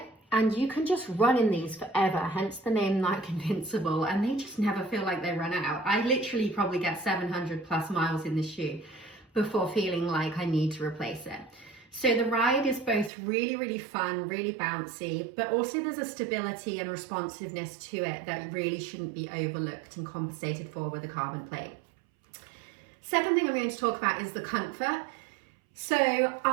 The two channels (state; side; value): drops out; left; at 13.1 s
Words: And you can just run in these forever, hence the name Nike Invincible, and they just never feel like they run out. I literally probably get 700 plus miles in this shoe before feeling like I need to replace it. So the ride is both really fun, really bouncy, but also there's a stability and responsiveness to it that really shouldn't be overlooked and compensated for with a carbon plate. Second thing I'm going to talk about is the comfort. So